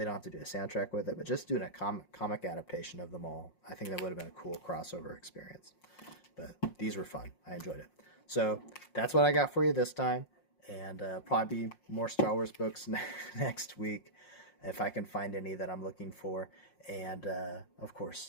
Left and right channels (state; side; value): late; right; 5.6 ms